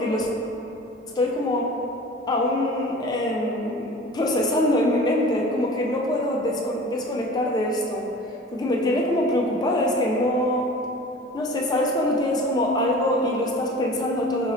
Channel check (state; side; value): normal; both; correlation 0.40